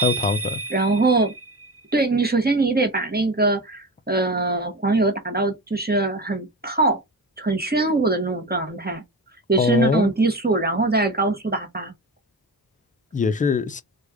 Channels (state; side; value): normal; both; correlation 0.27